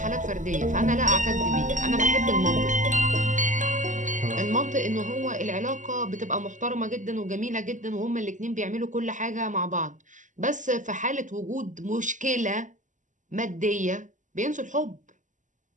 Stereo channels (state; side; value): late; left; 0.37 ms